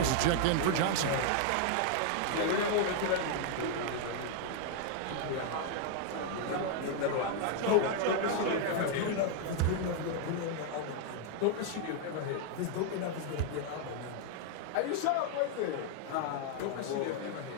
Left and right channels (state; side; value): different; both; correlation 0.00